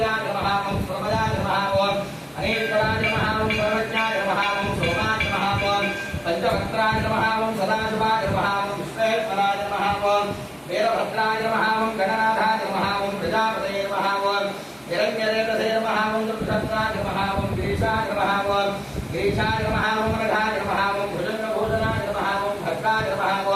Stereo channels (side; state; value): both; identical; correlation 1.00